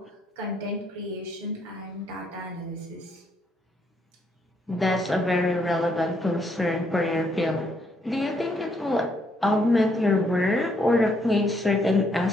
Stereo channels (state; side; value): normal; both; correlation 0.72